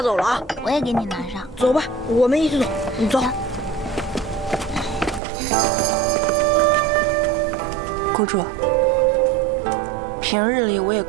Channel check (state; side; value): drops out; left; at 5.2 s